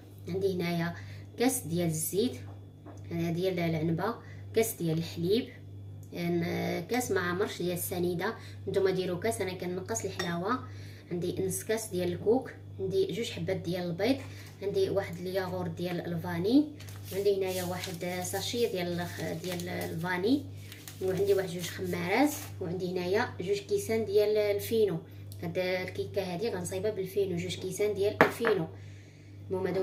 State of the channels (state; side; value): identical; both; correlation 1.00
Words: عندي هنايا كاس ديال الزيت ديال العنبه، كاس ديال الحليب، كاس ما عمرش ديال السنيده. نتوما ديروا كاس، انا كنقص الحلاوه. عندي نص كاس ديال الكوك، عندي جوج حبات ديال البيض، عندي واحد الياغورت ديال الفاني، عندي هنايا واحد ساشي ديال الفاني، وعندي واحد جوج خمارات، وعندي هنايا جوج كيسان ديال الفينو. هاد الكيكه هادي غنصايبها بالفينو، جوج كيسان ديال الفينو. المهم